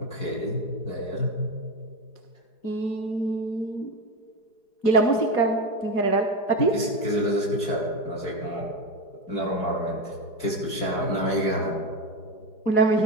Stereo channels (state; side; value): late; right; 4.8 ms